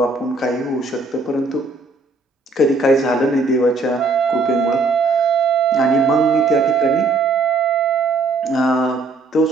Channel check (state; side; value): quieter; left; 3.6 dB